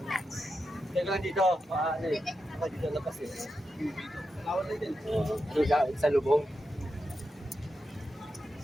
Teka lang dito. Ano eh? Ako dito labas eh. Lawat na din. Ano ka? Sa lubong.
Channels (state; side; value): normal; both; correlation 0.88